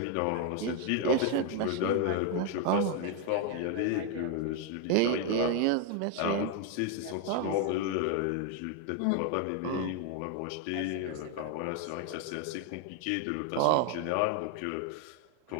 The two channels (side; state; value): both; different; correlation 0.01